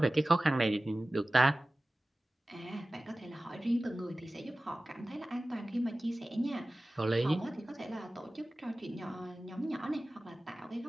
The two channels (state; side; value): normal; both; correlation 0.97